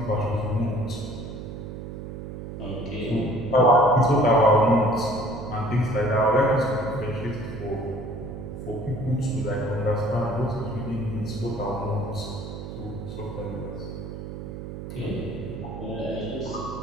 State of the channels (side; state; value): right; noise; hum, 9 dB below the sound